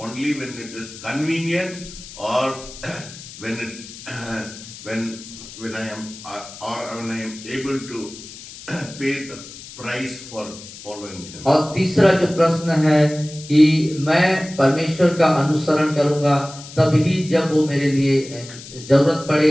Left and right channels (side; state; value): left; noise; hiss, 15 dB below the sound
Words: when it is convenient, or when when I am able to pay the price for following Him? और तीसरा जो प्रश्न है कि मैं परमेश्वर का अनुसरण करूंगा तभी जब वो मेरे लिए जरूरत पड़े